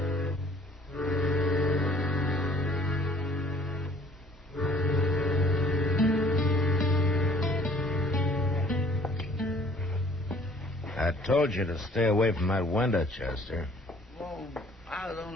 I told you to stay away from that window, Chester. Well, I was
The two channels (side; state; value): both; normal; correlation 0.56